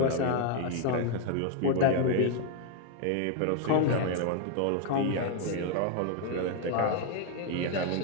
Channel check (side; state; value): both; different; correlation 0.00